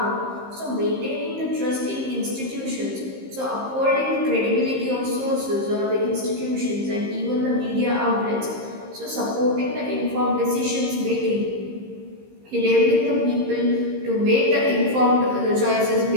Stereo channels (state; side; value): late; left; 15 ms